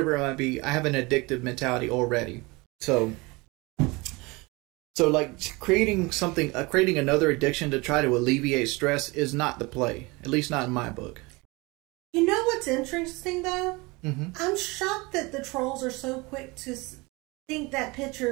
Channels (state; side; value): quieter; left; 24.8 dB